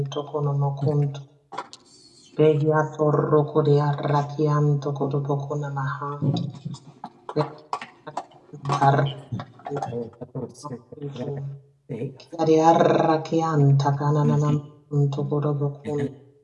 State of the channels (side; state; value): both; identical; correlation 1.00